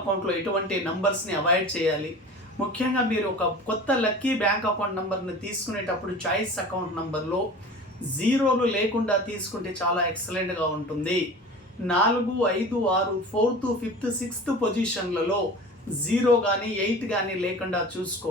ఎటువంటి నంబర్స్ని అవాయిడ్ చేయాలి. ముఖ్యంగా మీరు ఒక కొత్త లక్కీ బ్యాంక్ అకౌంట్ నంబర్ని తీసుకునేటప్పుడు చాయిస్ అకౌంట్ నంబర్లో జీరోలు లేకుండా తీసుకుంటే చాలా ఎక్సలెంట్గా ఉంటుంది. 4, 5, 6, 4th, 5th, 6th పొజిషన్లలో 0 కానీ 8 కానీ లేకుండా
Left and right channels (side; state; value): both; normal; correlation 0.37